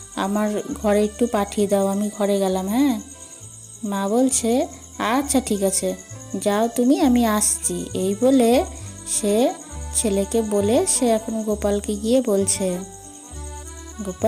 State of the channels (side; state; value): both; identical; correlation 1.00